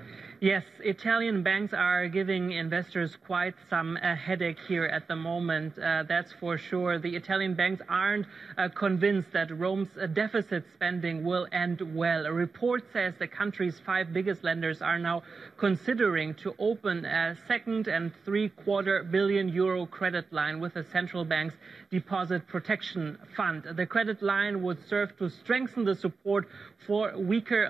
Yes, Italian banks are giving investors quite some headache here at the moment. That's for sure. The Italian banks aren't convinced that Rome's deficit spending will end well. A report says the country's 5 biggest lenders are now considering to open a €2.75 billion credit line with the central bank's deposit protection fund. The credit line would serve to strengthen the support for weaker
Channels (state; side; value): quieter; left; 4.6 dB